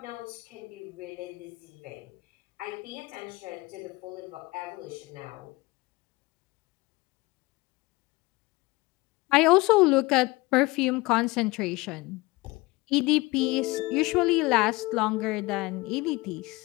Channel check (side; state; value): right; quieter; 22.3 dB